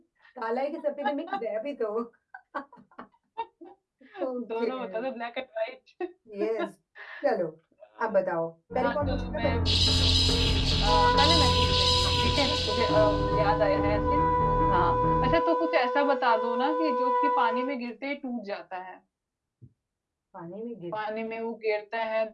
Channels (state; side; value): identical; both; correlation 1.00